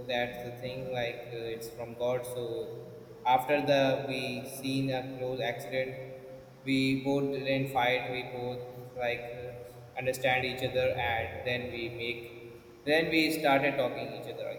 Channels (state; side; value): identical; both; correlation 1.00